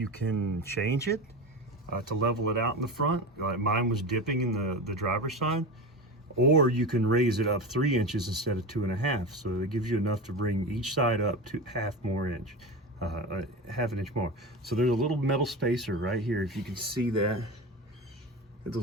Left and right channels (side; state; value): both; normal; correlation 0.25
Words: can change it to level it out in the front. Mine was dipping in the driver's side. Or you can raise it up 3 inches instead of 2.5. So it gives you enough to bring each side up to half an inch more. So there's a little metal spacer right here. If you can see that,